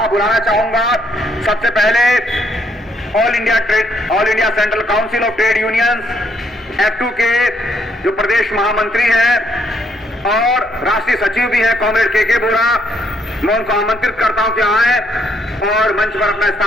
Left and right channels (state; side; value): normal; both; correlation 0.71